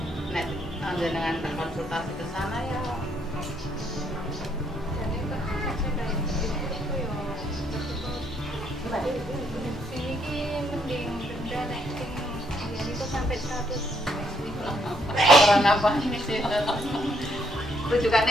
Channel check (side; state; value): both; normal; correlation 0.72